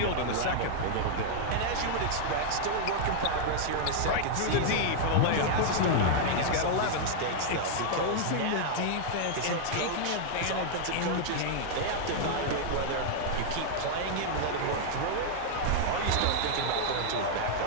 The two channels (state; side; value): different; both; correlation -0.01